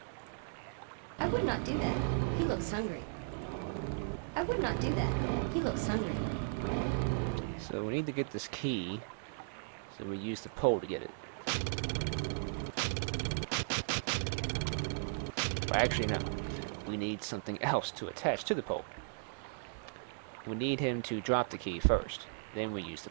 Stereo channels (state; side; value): silent; left; digital silence